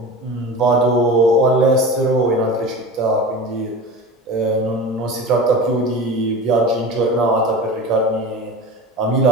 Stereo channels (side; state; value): both; normal; correlation 0.32